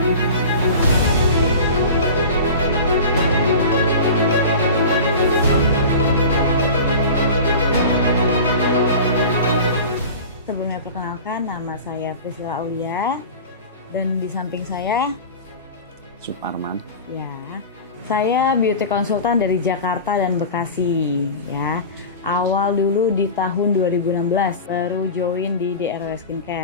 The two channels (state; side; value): inverted; both; correlation -0.34